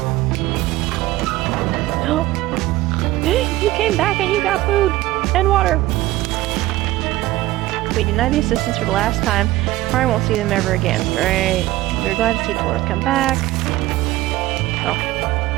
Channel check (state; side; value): quieter; left; 17.0 dB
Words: Oh, you came back and you got food and water. We denied the assistance for the last time. Probably won't see them ever again. Great. We're glad to see Dolores come back. Oh.